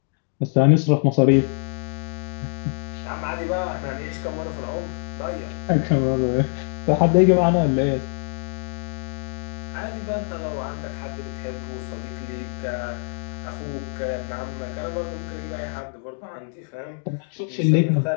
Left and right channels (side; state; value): right; silent; 62 dB below the other